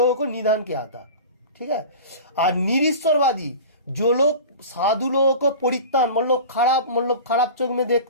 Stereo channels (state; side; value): inverted; both; correlation -0.35